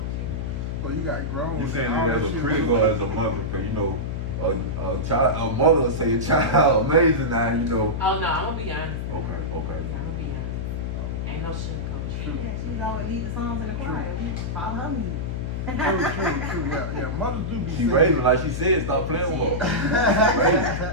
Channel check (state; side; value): noise; left; hum, 3 dB below the sound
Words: to. So you got grown. You saying All it as that a shit critic was- or as a mother? Because you know, a mother will say a child amazing now. You know. Oh no, I'm gonna be honest. Okay. Yeah, I'm gonna be honest. Ain't no sugarcoat shit. Yeah, she's always lead the songs in the choir. We follow her lead. True. Yeah. Mothers do be She saying. raising like she said. Stop playing with